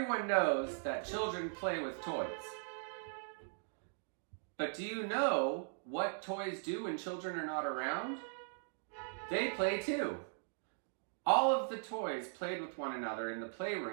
knows that children play with toys. But do you know what toys do when children are not around? They play too. All of the toys played with one another in the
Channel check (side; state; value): left; silent; digital silence